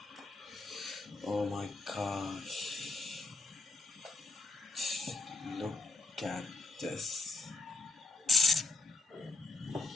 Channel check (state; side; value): quieter; right; 3.1 dB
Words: Oh my gosh. Look at this.